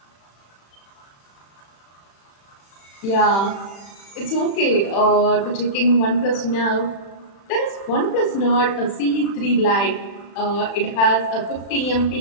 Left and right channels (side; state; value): right; late; 36 ms